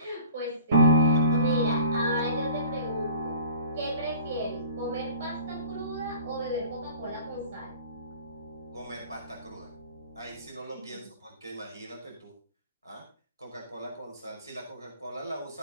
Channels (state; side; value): inverted; both; correlation -0.45